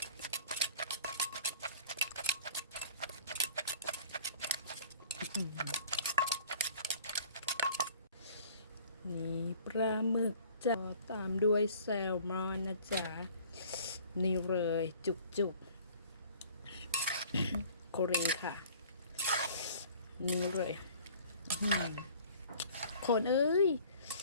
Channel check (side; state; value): both; inverted; correlation -0.50